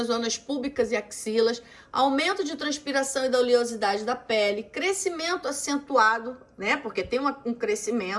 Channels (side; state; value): both; identical; correlation 1.00